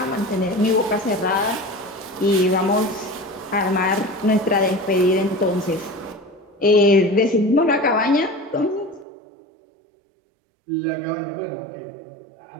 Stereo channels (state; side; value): drops out; left; at 9.1 s